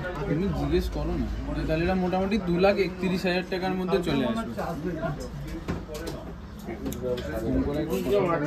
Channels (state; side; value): identical; both; correlation 1.00